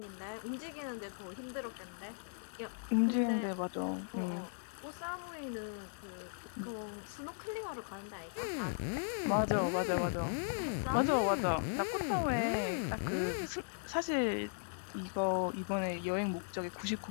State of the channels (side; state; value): right; silent; 53 dB below the other